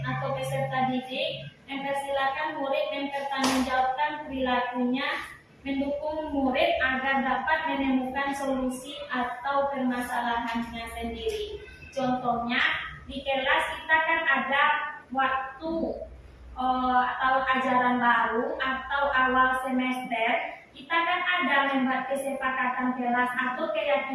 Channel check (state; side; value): identical; both; correlation 1.00